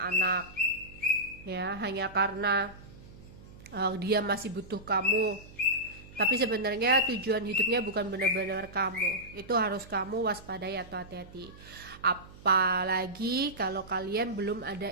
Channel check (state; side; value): noise; right; hum, 19 dB below the sound